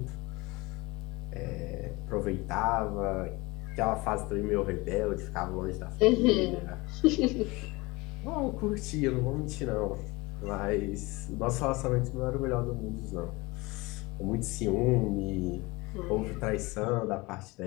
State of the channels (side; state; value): right; quieter; 23.6 dB